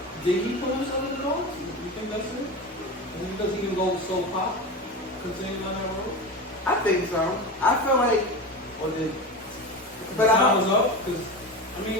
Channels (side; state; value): both; normal; correlation 0.25